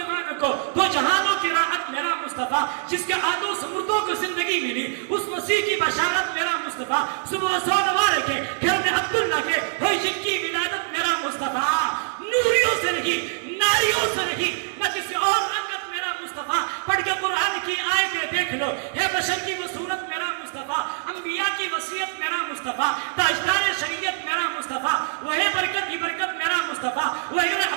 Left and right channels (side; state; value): left; silent; digital silence